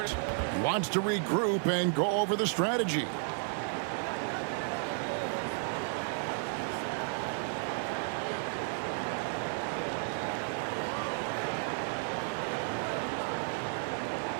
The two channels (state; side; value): silent; left; 56 dB below the other